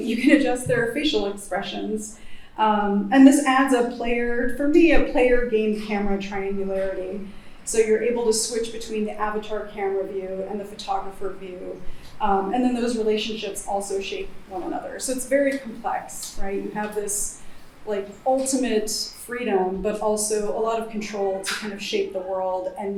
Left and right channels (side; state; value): both; identical; correlation 1.00